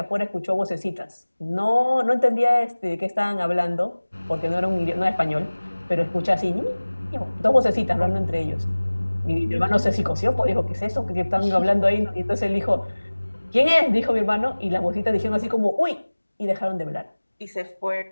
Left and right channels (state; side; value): inverted; both; correlation -1.00